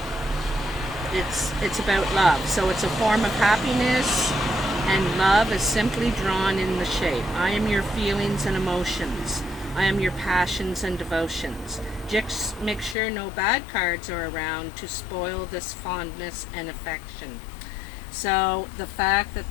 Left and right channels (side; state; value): right; drops out; at 13.0 s